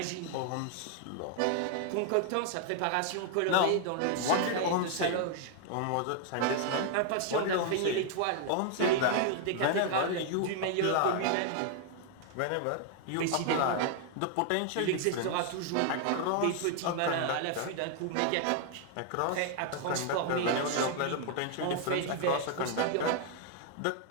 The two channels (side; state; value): both; different; correlation 0.00